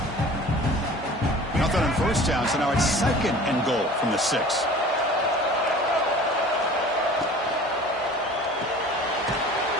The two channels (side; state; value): both; normal; correlation 0.44